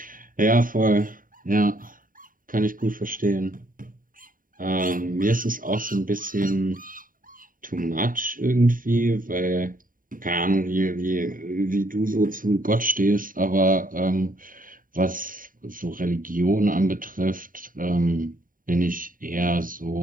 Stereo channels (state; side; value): late; left; 0.40 ms